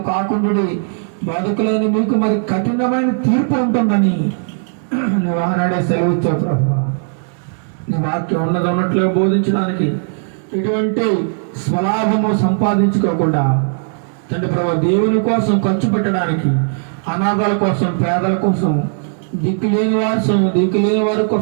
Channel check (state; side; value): silent; left; digital silence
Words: కాకుండా, బాధకులైన మీకు మరి కఠినమైన తీర్పు ఉంటుందని నువ్వు ఆనాడే సెలవిచ్చావు ప్రభా. నీ వాక్యం ఉన్నట్లుగా బోధించడానికి, ఎటువంటి స్వలాభము సంపాదించుకోకుండా తండ్రి ప్రభు దేవుని కోసం ఖర్చు పెట్టడానికి, అనాథాల కోసం, పేదల కోసం, దిక్కులేని వారి